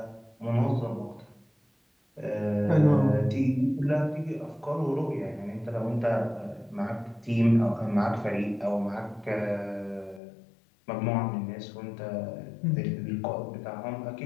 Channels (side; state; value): right; drops out; at 10.2 s